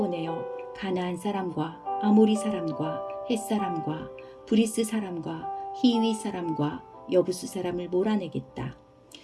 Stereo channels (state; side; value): identical; both; correlation 1.00